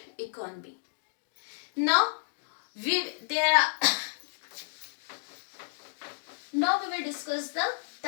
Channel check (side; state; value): right; silent; digital silence